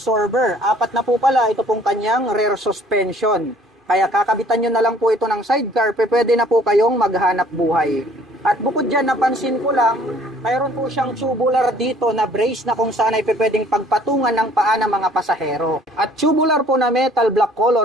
4 na po pala ito pong kanyang rear suspension. Kaya kakabitan nyo na lang po ito ng sidecar, pwede na po kayong maghanap buhay. At bukod dyan, napansin ko lang, mayroon po siyang tubular dito na brace na kung saan ay pwedeng pagpatungan ng paa ng mga pasahero. At tubular po na metal black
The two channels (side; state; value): both; normal; correlation 0.56